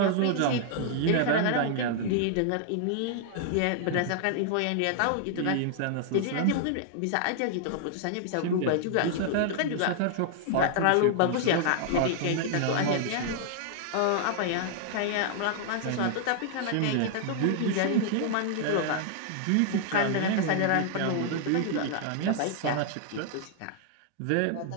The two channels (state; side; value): different; both; correlation -0.01